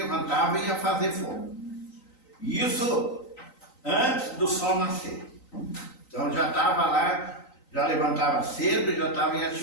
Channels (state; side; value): late; right; 3.9 ms